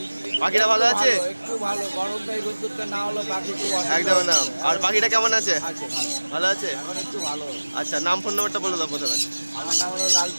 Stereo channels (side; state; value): both; inverted; correlation -1.00